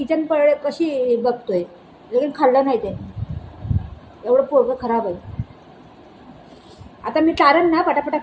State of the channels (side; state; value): both; identical; correlation 1.00